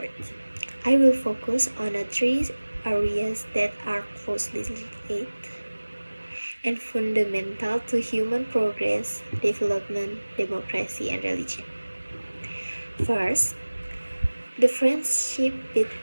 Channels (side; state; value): both; inverted; correlation -1.00